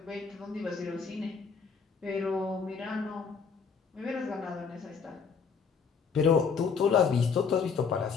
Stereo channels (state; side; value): quieter; right; 5.7 dB